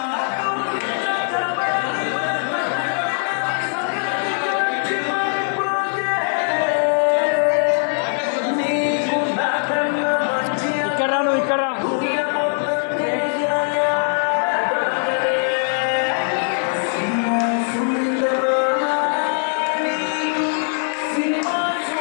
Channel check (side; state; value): right; silent; 65 dB below the other